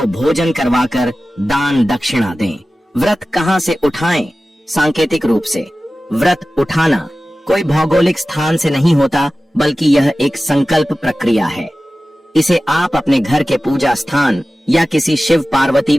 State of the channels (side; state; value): both; normal; correlation 0.95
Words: भोजन करवाकर दान दक्षिणा दें। व्रत कहाँ से उठाएं? सांकेतिक रूप से व्रत उठाना कोई भौगोलिक स्थान से नहीं होता, बल्कि यह एक संकल्प प्रक्रिया है। इसे आप अपने घर के पूजा स्थान या किसी शिव पार्वती